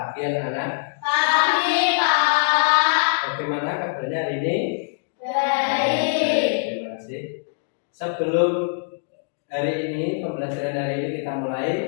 anak-anak. Pagi, Pak. Bagaimana kabarnya hari ini? Baik. Terima kasih. Sebelum hari ini, pembelajaran hari ini kita mulai,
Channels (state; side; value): silent; right; digital silence